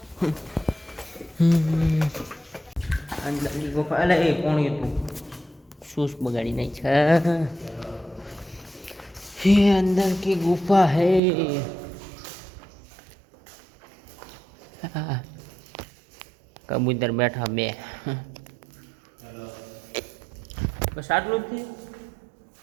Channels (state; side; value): drops out; left; at 11.2 s